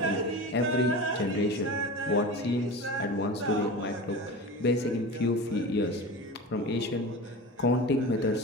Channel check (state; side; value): normal; both; correlation 0.31